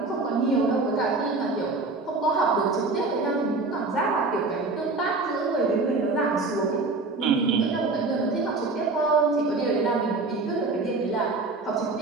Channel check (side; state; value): left; quieter; 3.6 dB